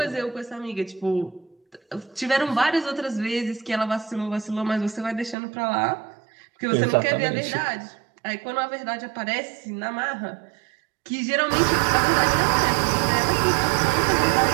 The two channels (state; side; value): drops out; left; at 5.4 s